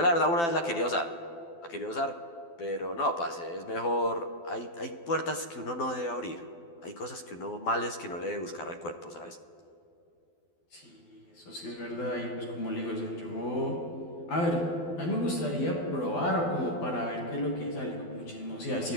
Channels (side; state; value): right; late; 12 ms